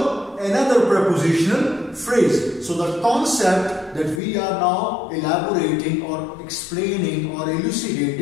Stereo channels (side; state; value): right; drops out; at 4.2 s